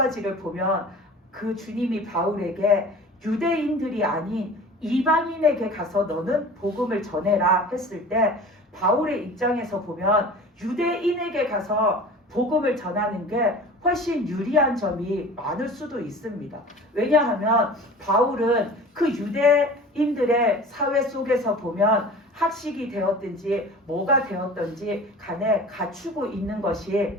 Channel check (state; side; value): normal; both; correlation 0.40